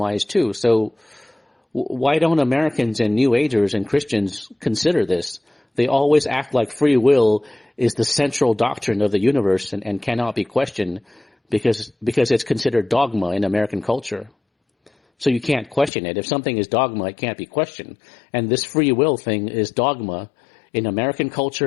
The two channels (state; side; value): drops out; right; at 15.9 s